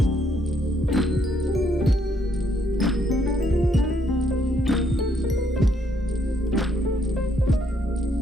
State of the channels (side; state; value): both; normal; correlation 0.71